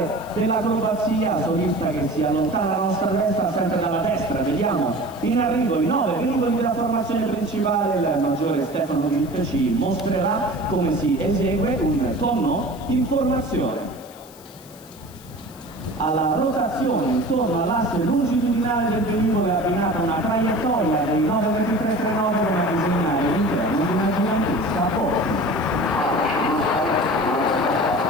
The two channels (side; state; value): left; noise; hiss, 22 dB below the sound